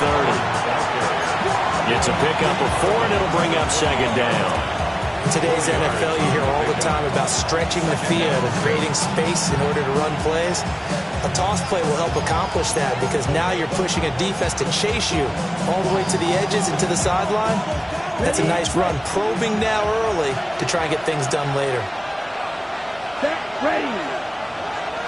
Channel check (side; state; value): both; identical; correlation 1.00